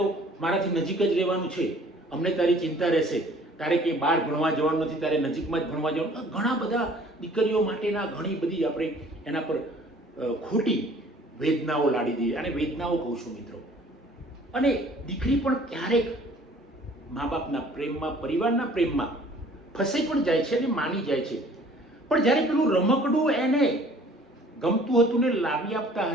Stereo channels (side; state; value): both; normal; correlation 0.53